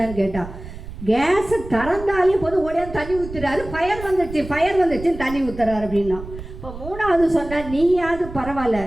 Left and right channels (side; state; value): right; noise; rumble, 12 dB below the sound